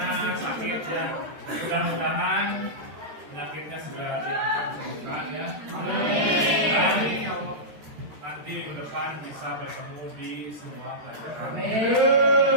sakit ya. Mudah-mudahan penyakitnya segera diangkat sembuhkan ya. Amin. depan bisa bertemu di semua pelajaran.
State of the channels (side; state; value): left; late; 13 ms